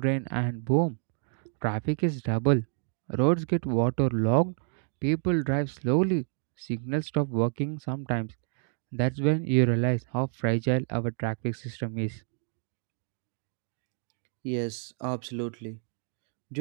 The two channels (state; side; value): silent; left; 56 dB below the other